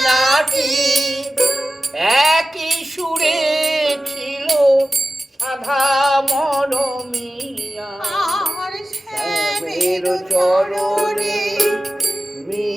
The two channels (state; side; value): normal; both; correlation 0.95